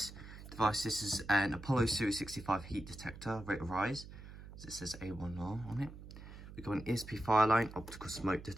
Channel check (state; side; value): noise; right; hum, 14 dB below the sound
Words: device. This is an Apollo Series 65 heat detector, rate of rise, as it says A1R on it. We've got an ESP fire line optical smoke